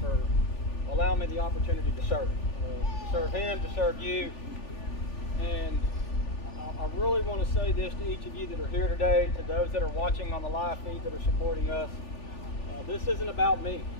for allowing me the opportunity to serve Him, to serve you. And I really want to say this to each of you that are here today, to those that are watching on the live feed that are supporting us. This isn't about me.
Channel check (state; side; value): late; right; 3.4 ms